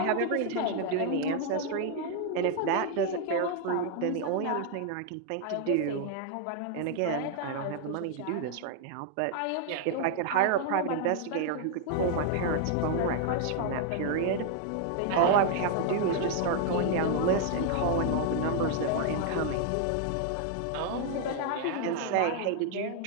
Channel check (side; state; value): both; different; correlation 0.00